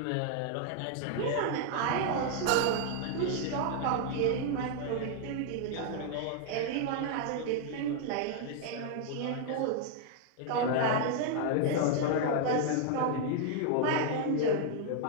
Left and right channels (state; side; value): different; both; correlation 0.00